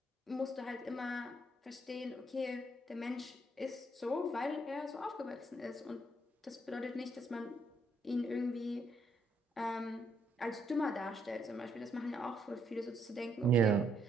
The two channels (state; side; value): normal; both; correlation 0.72